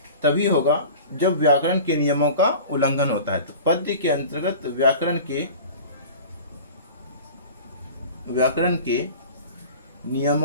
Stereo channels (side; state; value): both; inverted; correlation -0.38